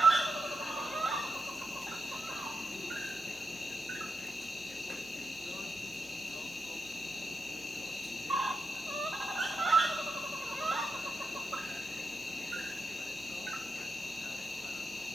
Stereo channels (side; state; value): both; normal; correlation 0.85